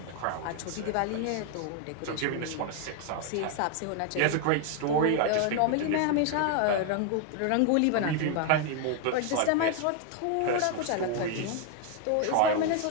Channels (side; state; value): both; different; correlation 0.01